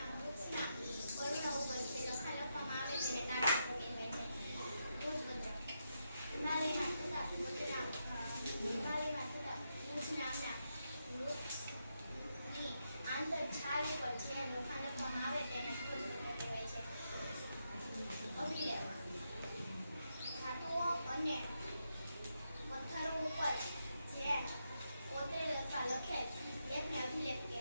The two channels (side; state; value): both; inverted; correlation -0.84